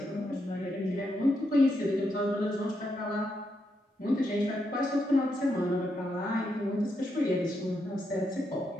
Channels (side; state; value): both; normal; correlation 0.81